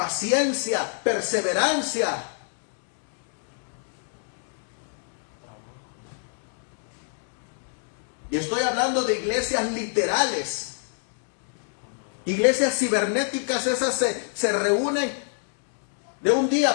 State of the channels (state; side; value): silent; right; 58 dB below the other